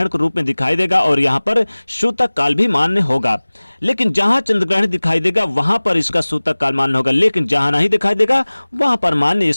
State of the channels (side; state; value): both; inverted; correlation -1.00